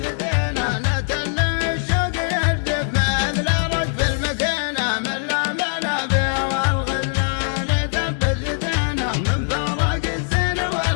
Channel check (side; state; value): right; silent; digital silence